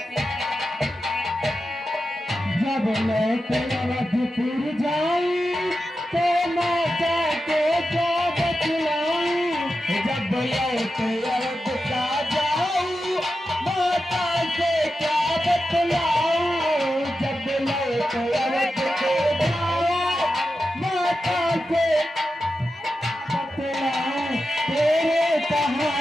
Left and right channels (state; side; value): normal; both; correlation 0.90